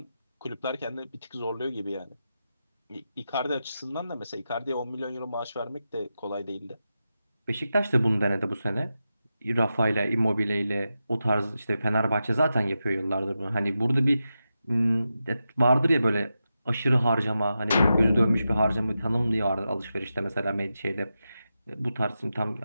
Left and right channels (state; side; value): inverted; both; correlation -0.90